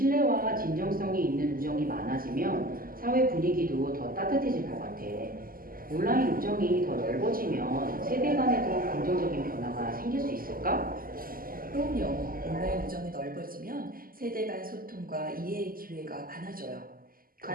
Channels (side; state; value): left; late; 0.42 ms